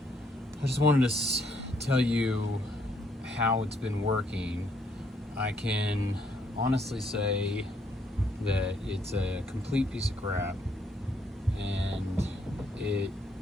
I just wanted to tell you how it's been working. I can honestly say that it's a complete piece of crap, and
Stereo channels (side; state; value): both; normal; correlation 0.70